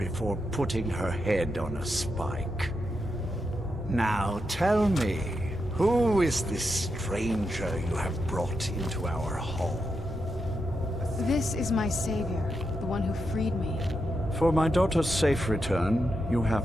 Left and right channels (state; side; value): normal; both; correlation 0.85